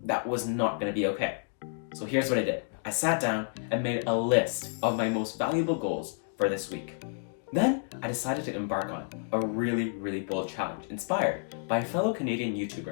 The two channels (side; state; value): right; silent; digital silence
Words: that was not gonna be okay. So here's what I did. I sat down and made a list of my most valuable goals for this week. Then I decided to embark on a really bold challenge inspired by a fellow Canadian